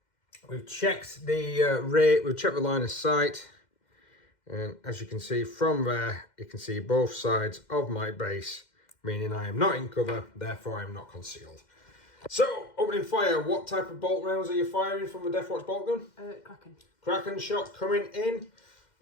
We've checked the rate, we've checked the line of sight, and as you can see from there, you can see both sides of my base, meaning I am not in cover, therefore I am not concealed. So, opening fire, what type of bolt rounds are you firing from the Deathwatch bolt gun? Kraken. Kraken shot coming in.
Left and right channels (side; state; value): right; late; 2.1 ms